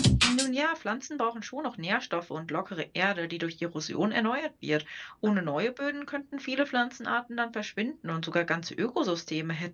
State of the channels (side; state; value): both; identical; correlation 1.00